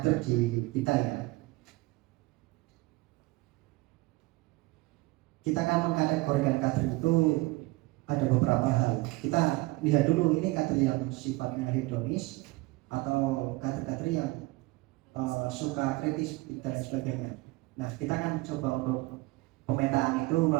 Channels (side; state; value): left; quieter; 21.9 dB